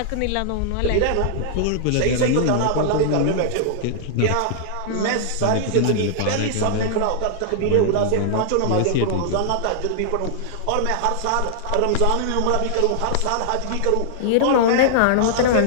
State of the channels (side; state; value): both; different; correlation -0.01